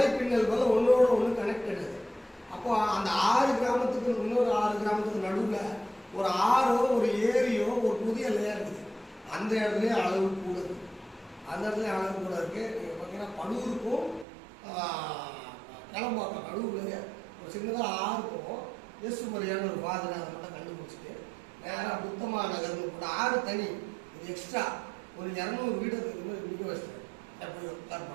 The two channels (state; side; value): drops out; left; at 14.2 s